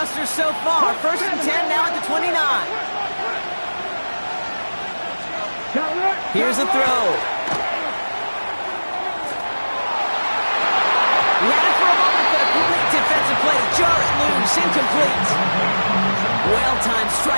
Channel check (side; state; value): both; inverted; correlation -1.00